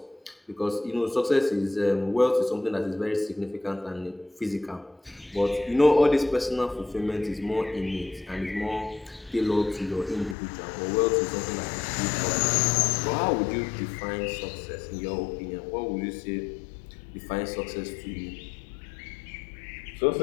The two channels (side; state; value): right; drops out; at 10.4 s